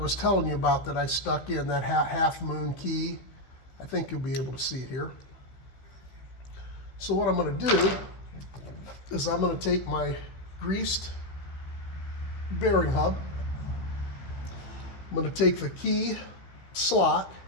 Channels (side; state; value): right; late; 16 ms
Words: telling you about that I stuck in, that half moon key. I think you'll be able to see it here. So what I'm going to do is I'm going to take my greased bearing hub. I'm going to take the key slot,